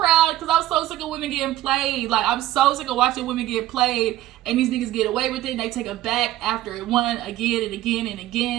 because I was so sick of women getting played. Like, I'm so sick of watching women get played and these niggas get away with it and they take it back after it won again and again and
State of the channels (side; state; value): left; quieter; 14.5 dB